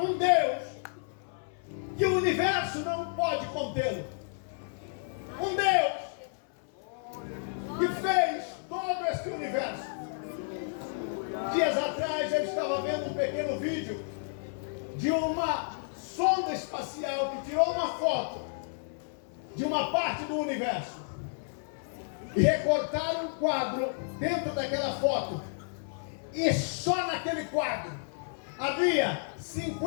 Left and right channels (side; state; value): right; silent; 57 dB below the other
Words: um Deus que o universo não pode contê-lo. Um Deus que fez todo esse universo. Dias atrás eu estava vendo um pequeno vídeo de uma sonda espacial que tirou uma foto de uma parte do universo e recortaram um quadro dentro daquela foto, e só naquele quadro havia